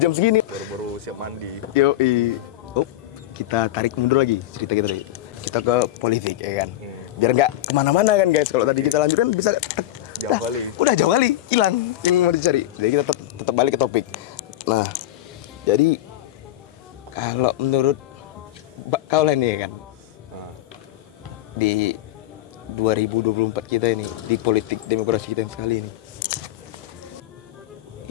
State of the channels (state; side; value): quieter; right; 14.3 dB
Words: jam segini. Baru siap mandi. Yoi. Oh, kita tarik mundur lagi cerita kita tadi. Kita ke politik ya kan. Biar nggak kemana-mana kan guys. Kalau tadi kita lanjutkan bisa jauh kali. Udah jauh kali hilang yang mau dicari. Jadi kita tetap balik ke topik. Nah, jadi kalau menurut kau lah nih kan, di 2024 kita ini, di politik demokrasi kita yang sekali ini,